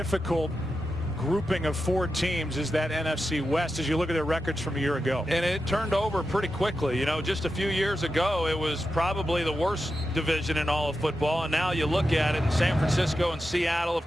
grouping of 4 teams is that NFC West as you look at their records from a year ago. And it turned over pretty quickly. You know, just a few years ago, it was probably the worst division in all of football. And now you look at it in San Francisco and Seattle,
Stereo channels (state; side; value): normal; both; correlation 0.89